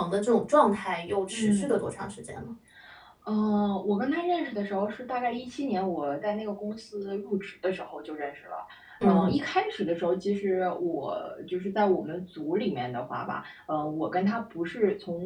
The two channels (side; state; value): both; identical; correlation 1.00